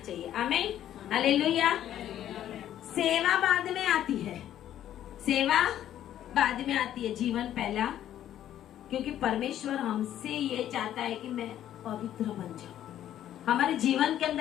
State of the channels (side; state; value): right; quieter; 11.5 dB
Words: आमीन, हालेलुया। सेवा बाद में आती है, सेवा बाद में आती है, जीवन पहला। क्योंकि परमेश्वर हमसे ये चाहता है कि मैं पवित्र बन जाऊं। हमारे जीवन के